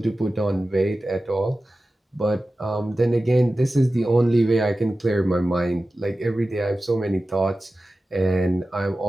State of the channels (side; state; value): both; normal; correlation 0.95